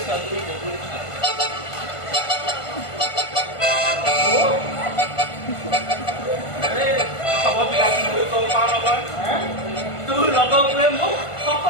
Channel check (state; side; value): late; right; 1.5 ms